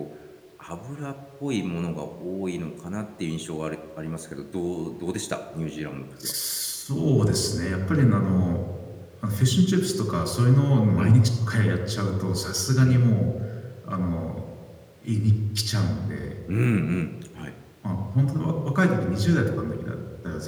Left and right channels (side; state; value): both; identical; correlation 1.00